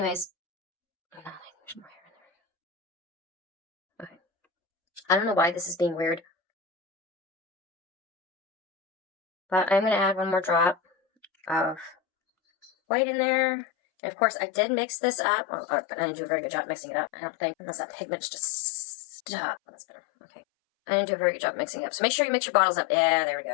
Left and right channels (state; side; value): drops out; right; at 12.7 s